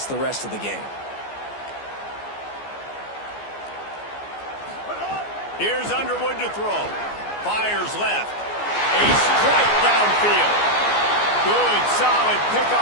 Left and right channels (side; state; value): right; late; 14 ms